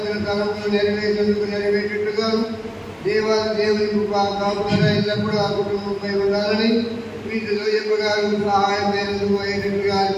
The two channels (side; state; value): both; identical; correlation 1.00